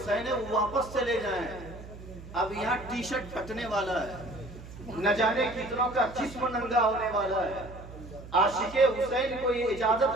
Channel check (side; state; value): right; noise; hum, 15 dB below the sound